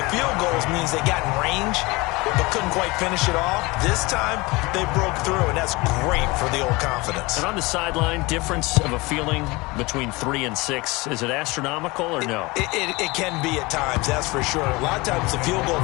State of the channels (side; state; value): right; quieter; 23.6 dB